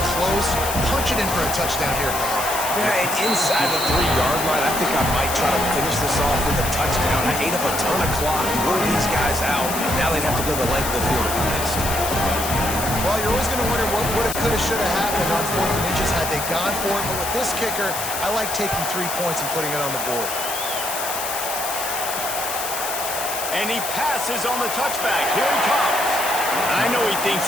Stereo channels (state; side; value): noise; left; hiss, 5 dB below the sound